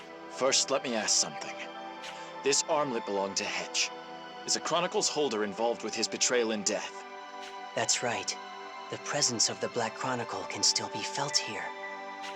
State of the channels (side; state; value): both; identical; correlation 1.00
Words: First, let me ask something. This armlet belonged to Hedge. Is a Chronicle's holder involved with his betrayal and death? That's right. The presence of the Black Chronicle can still be felt here.